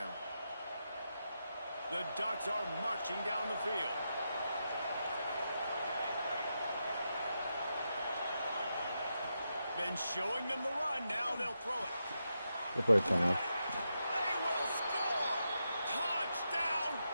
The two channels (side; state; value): both; inverted; correlation -0.86